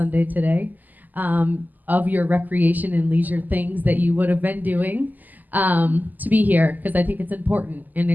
today of your recreation and leisure things that you would have been doing to be here, because I think it's important, and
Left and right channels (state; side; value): late; left; 0.084 ms